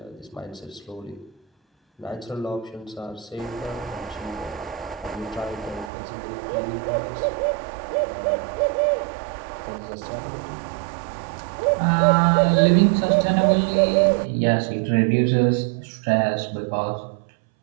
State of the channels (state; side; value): drops out; left; at 5.9 s